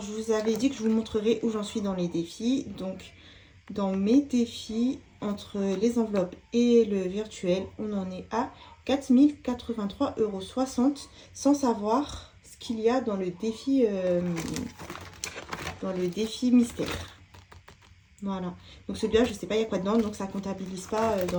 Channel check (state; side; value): identical; both; correlation 1.00